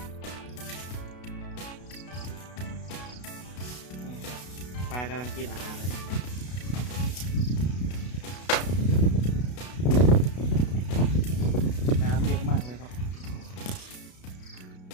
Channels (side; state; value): right; late; 32 ms